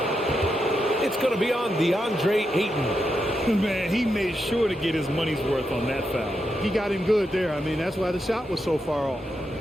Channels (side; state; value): both; normal; correlation 0.85